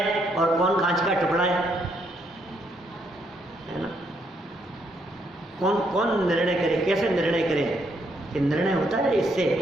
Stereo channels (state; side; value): normal; both; correlation 0.74